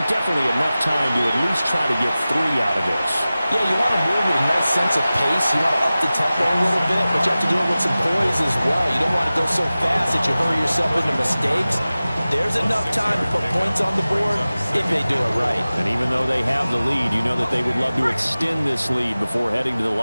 definitely enough time to at least try to get 3 out of this. Yeah, you want to move with a nice sense of pace. You want to up the tempo a little bit, but you have to do it with some poise as well. You don't want to go so fast that you hurry yourself into mistakes. There's enough time to put points on the board if they do it right. And even though they have the lead, you know that they would love to extend this lead before heading to the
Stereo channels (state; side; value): inverted; both; correlation -0.97